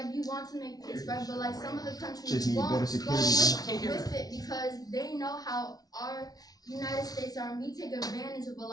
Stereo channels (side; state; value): right; late; 0.19 ms